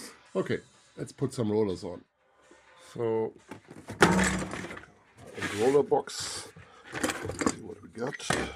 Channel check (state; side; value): identical; both; correlation 1.00